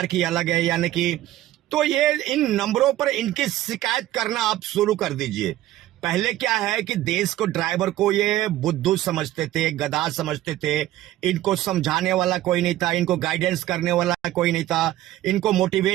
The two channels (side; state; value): left; quieter; 14.5 dB